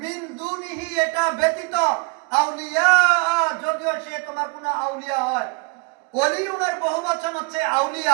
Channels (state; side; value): quieter; left; 30.4 dB